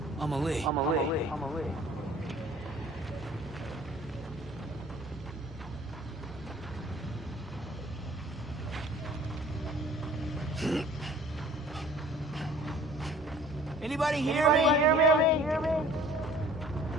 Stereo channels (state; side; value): normal; both; correlation 0.51